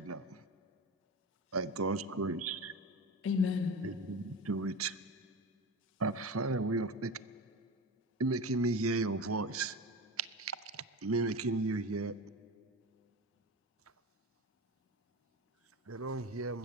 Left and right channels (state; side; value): normal; both; correlation 0.27